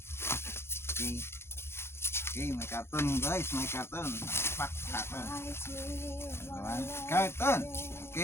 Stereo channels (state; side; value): late; right; 0.12 ms